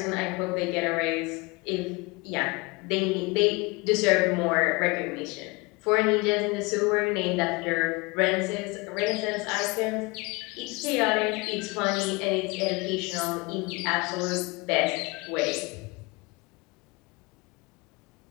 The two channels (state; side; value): quieter; right; 26.1 dB